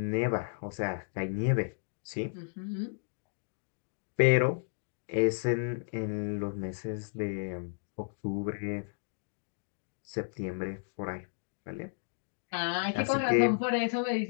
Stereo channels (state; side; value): silent; right; digital silence